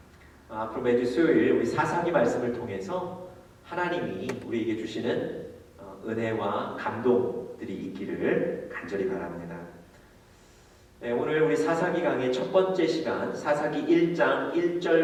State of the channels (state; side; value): identical; both; correlation 1.00